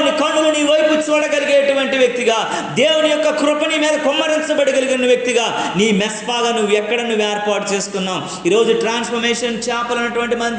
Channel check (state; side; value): identical; both; correlation 1.00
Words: కన్నులు నీ వైపు చూడగలిగేటువంటి వ్యక్తిగా, దేవుని యొక్క కృపని మీద కుమ్మరించబడగలిగిన వ్యక్తిగా నీ మెస్పాగా నువ్వు ఏర్పాటు చేసుకున్నావు. ఈరోజు ట్రాన్స్ఫర్మేషన్ చాపల్ అనేటువంటి